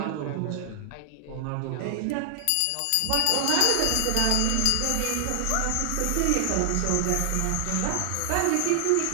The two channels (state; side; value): different; both; correlation 0.00